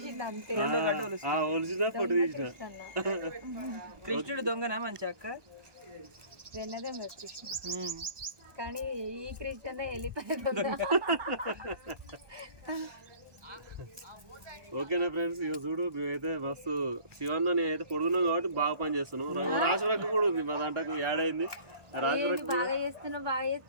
అంతే. ఒలిచినా పొట్టు తీసిన. కృష్ణుడు దొంగనా మంచి అక్క? వెన్నదే మరి కృష్ణ, కానీ ఈ కృష్ణ వెళ్ళిపోయాడు. ఓకేనా ఫ్రెండ్స్, ఇక చూడు మేమైతే మస్తు శివన్న నేనైతే పొడుగున్నాం కాబట్టి బాగా పని చేస్తున్నాం. రాజులక్క కూడా ఉంది మా దాంట్లో యాడ్ అయింది. బాగా చేస్తున్నావు, బాగా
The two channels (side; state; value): left; late; 1.2 ms